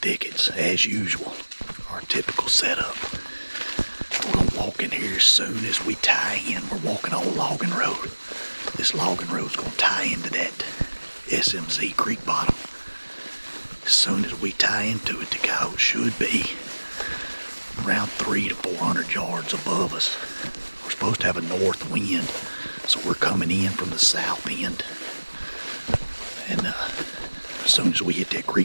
as usual. Our typical setup. We're gonna walk in here as soon as we tie in. We're walking on a logging road. This logging road's gonna tie into that SMZ creek bottom. As soon as we tie into it, the coyote should be around 300 to 400 yards above us. We're supposed to have a north wind, so we're coming in from the south end. And as soon as we hit that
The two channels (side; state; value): both; inverted; correlation -1.00